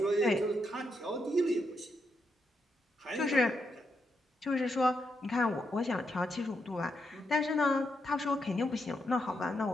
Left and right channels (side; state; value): both; normal; correlation 0.82